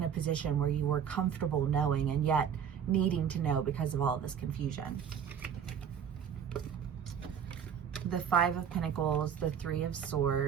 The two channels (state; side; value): quieter; left; 8.0 dB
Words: a position where you were comfortable knowing and yet needing to know because of all of this confusion. The Five of Pentacles, the Three of